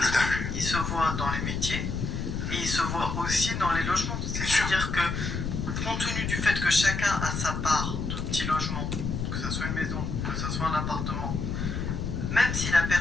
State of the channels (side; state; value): left; noise; rumble, 3 dB below the sound